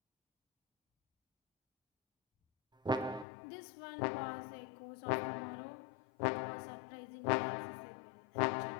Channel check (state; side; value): drops out; right; at 3.2 s